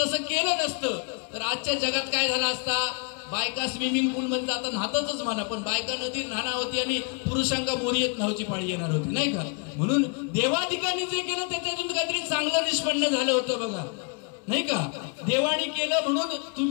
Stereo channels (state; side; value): quieter; right; 36.6 dB